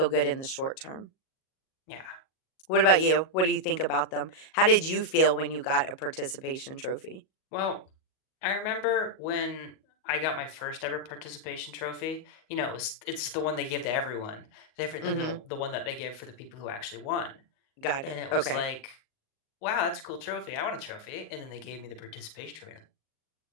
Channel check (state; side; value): late; right; 38 ms